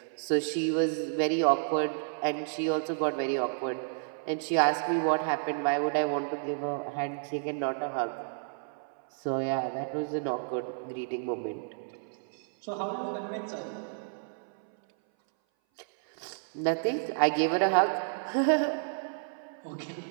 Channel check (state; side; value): silent; left; 57 dB below the other